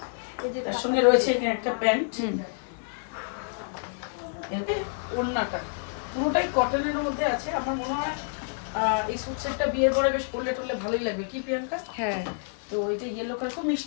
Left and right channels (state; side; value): silent; right; digital silence